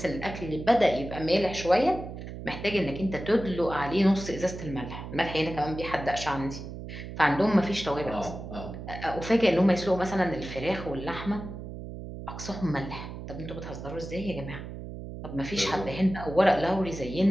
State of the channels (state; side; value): noise; right; hum, 10 dB below the sound